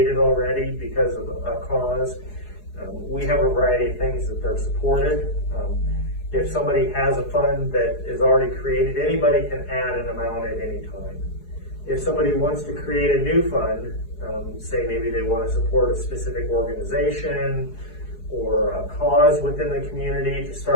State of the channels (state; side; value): late; right; 4.7 ms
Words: already because of a cause, we have a variety of things that they're supported. If somebody has a fund that is already created, anybody can add an amount at any time. If somebody wants to create a new fund, say maybe they want to support a specific organization or a cause within the community to